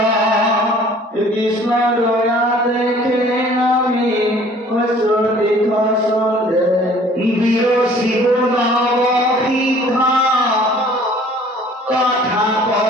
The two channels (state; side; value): normal; both; correlation 0.53